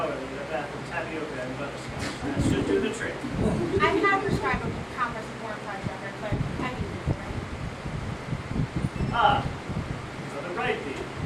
in a bath of tapioca and butterscotch. That should do the trick. I have prescribed a compress of cornflour, Reverend, but I can use it, right? Ah, Brother Brightbee.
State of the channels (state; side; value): identical; both; correlation 1.00